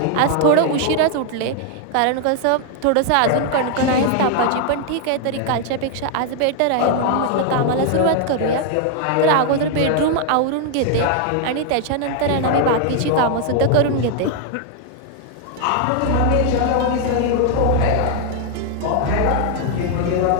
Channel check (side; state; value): both; different; correlation 0.00